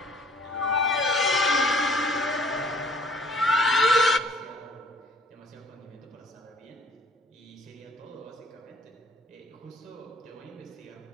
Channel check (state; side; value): normal; both; correlation 0.56